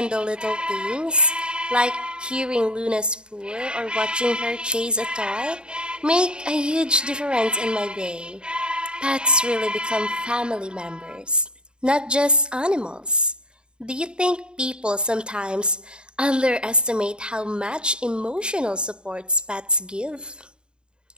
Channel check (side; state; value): left; late; 0.050 ms